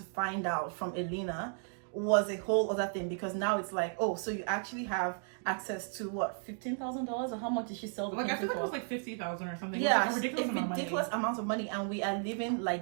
find out from Elena was a whole other thing, because now it's like, oh, so you actually have access to what, $15,000, or how much did she sell the painting I feel like for? it was like 50,000 or something. Yeah, like a ridiculous amount of money, and we are living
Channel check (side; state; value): left; silent; 55 dB below the other